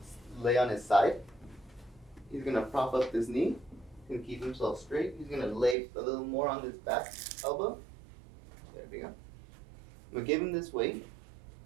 lay on his side. He's going to prop up his knee and keep himself straight. He's going to lay a little more on his back elbow. There we go. I'm going to give him this weight.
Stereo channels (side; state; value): left; drops out; at 5.8 s